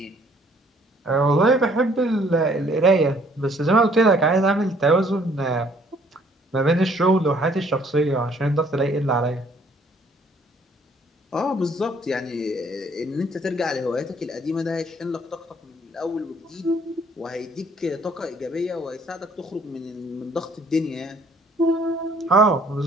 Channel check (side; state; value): both; normal; correlation 0.61